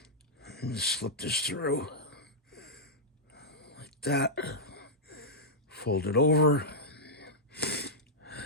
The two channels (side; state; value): both; normal; correlation -0.08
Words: just slip this through like that. Fold it over